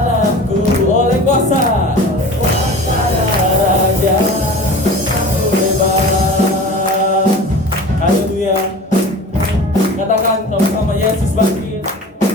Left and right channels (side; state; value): both; normal; correlation 0.38